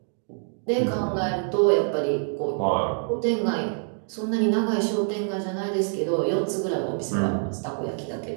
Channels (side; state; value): left; silent; 61 dB below the other